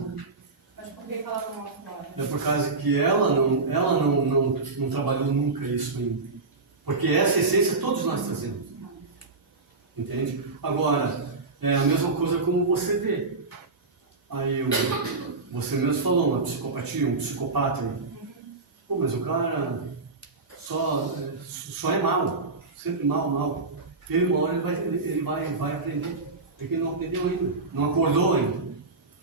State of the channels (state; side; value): quieter; left; 3.8 dB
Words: Mas por que ela não aflora? É por causa que ela não trabalhou nunca isso ainda. Porque essa essência todos nós trazemos. Entende? Agora, é a mesma coisa como você vê. Aí você mesmo falou, uma psicopatia, um psicopata. Pô, mas o cara só é mal. Sempre mal. Uma hora ele vai aprender. Porque ele não aprendeu ainda. Não acordou ainda.